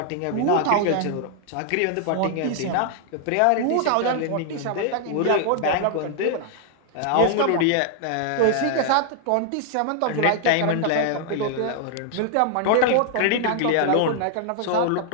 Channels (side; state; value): both; different; correlation 0.00